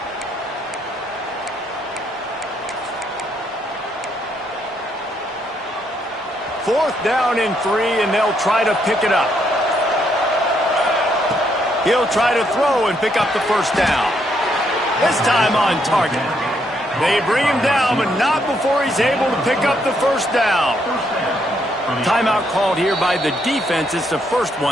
Fourth down and 3, and they'll try to pick it up. He'll try to throw and pick up the 1st down. This time on target. They bring him down, but not before he's able to pick up the 1st down. Timeout called here by the defense. It's the first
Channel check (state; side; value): normal; both; correlation 0.74